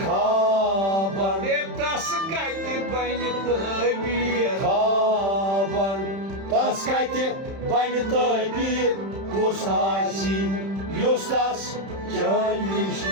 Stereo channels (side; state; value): left; late; 31 ms